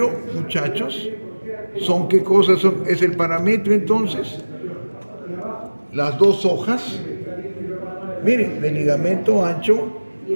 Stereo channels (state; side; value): inverted; both; correlation -1.00